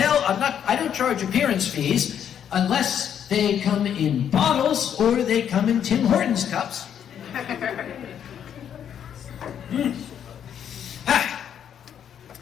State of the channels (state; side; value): quieter; right; 9.0 dB